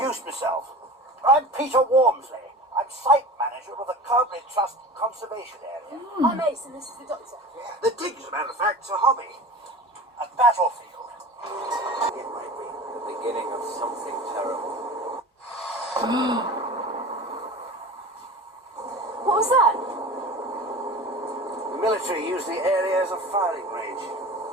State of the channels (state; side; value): normal; both; correlation 0.35